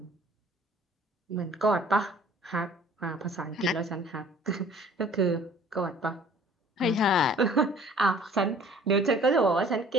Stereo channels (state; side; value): normal; both; correlation 0.52